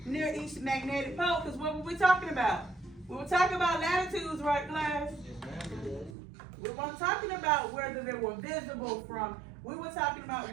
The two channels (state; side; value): drops out; left; at 6.2 s